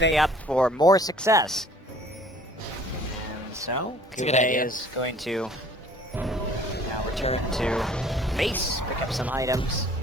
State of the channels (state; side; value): normal; both; correlation 0.53